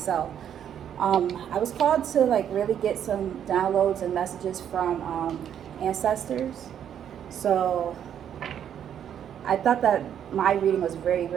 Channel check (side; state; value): left; quieter; 9.3 dB